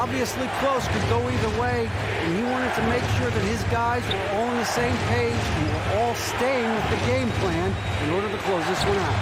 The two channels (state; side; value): identical; both; correlation 1.00